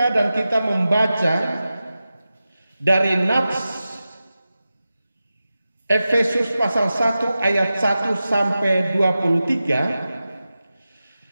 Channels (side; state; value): both; inverted; correlation -0.94